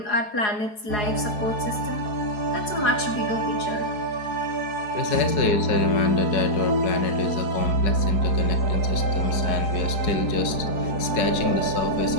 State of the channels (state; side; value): late; right; 4.7 ms